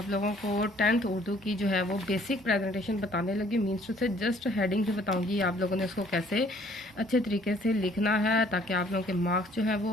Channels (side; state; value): both; normal; correlation 0.60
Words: लोगों को 10th उर्दू की जो है वो बेसिक प्रेजेंटेशन बताने लगी। मीन्स टू से जस्ट हेडिंग से बताऊंगी आप लोगों ने इसको कैसे अच्छे तरीके से लिखना है ताकि आप लोगों के मार्क्स जो है